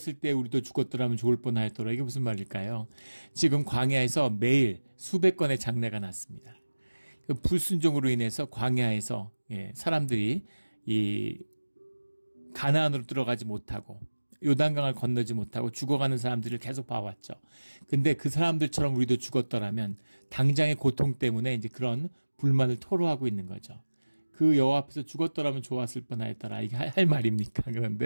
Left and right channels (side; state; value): both; inverted; correlation -1.00